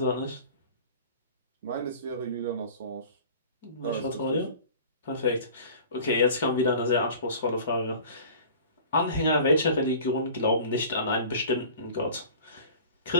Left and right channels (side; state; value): both; inverted; correlation -0.42